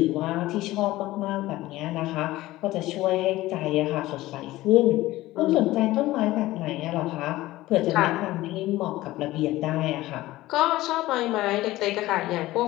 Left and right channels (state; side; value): quieter; right; 17.1 dB